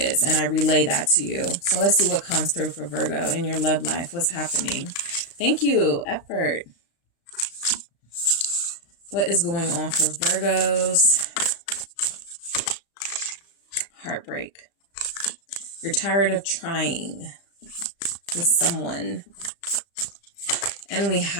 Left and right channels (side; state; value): right; late; 35 ms